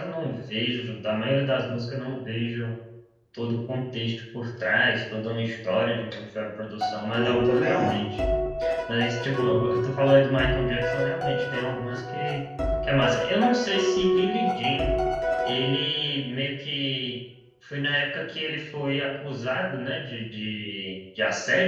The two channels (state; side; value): identical; both; correlation 1.00